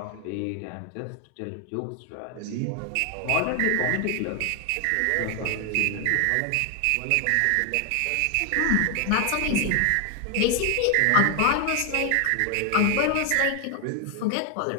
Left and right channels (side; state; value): both; different; correlation 0.01